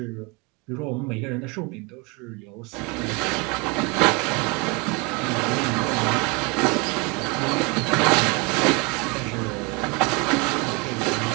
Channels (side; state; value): left; quieter; 28.1 dB